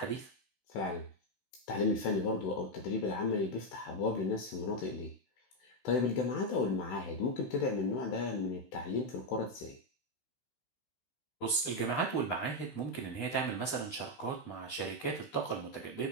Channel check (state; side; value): late; right; 16 ms